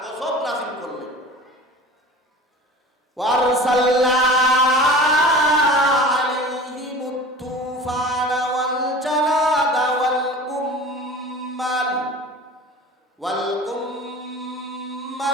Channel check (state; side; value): normal; both; correlation 0.39